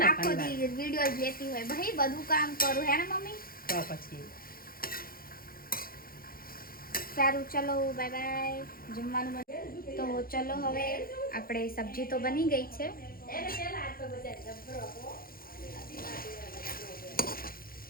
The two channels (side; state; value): right; late; 0.42 ms